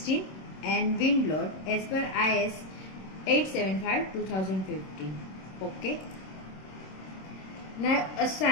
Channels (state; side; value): late; right; 26 ms